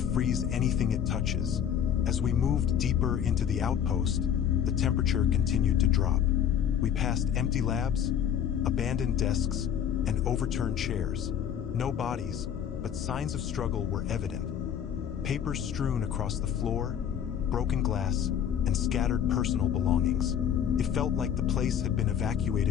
anything it touches." As we moved deeper into the outpost, the temperature continued to drop. We passed empty labs, abandoned desks, and overturned chairs. No bodies, but signs of struggle were evident. Papers strewn across the floor, broken glass, and scattered personal belongings. It felt like the place had been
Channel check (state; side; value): quieter; right; 9.1 dB